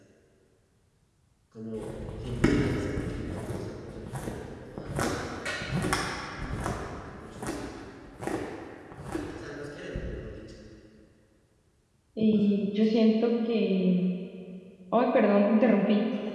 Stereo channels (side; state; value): both; identical; correlation 1.00